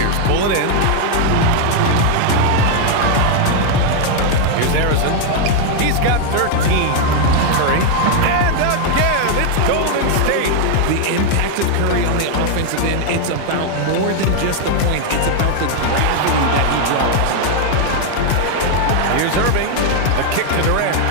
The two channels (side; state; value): both; different; correlation 0.00